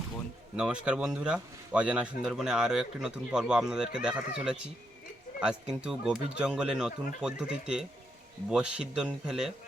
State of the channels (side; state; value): both; normal; correlation 0.80